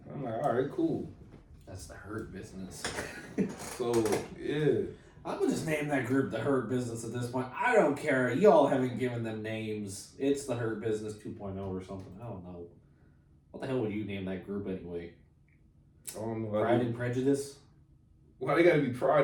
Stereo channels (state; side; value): identical; both; correlation 1.00